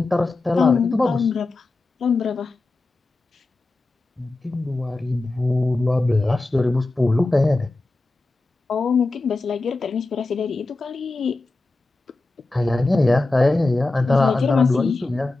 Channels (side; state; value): right; quieter; 3.1 dB